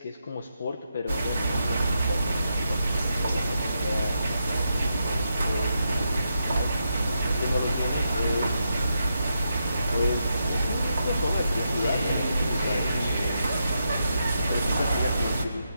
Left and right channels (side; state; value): both; inverted; correlation -0.84